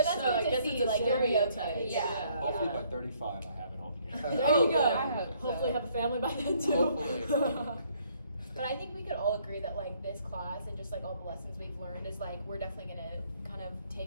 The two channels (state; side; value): inverted; both; correlation -0.65